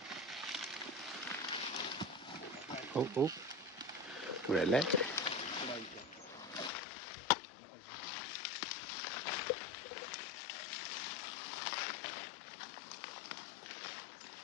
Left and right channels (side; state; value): right; drops out; at 6.7 s